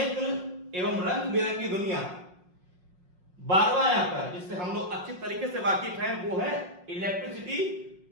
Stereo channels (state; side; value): late; left; 5.5 ms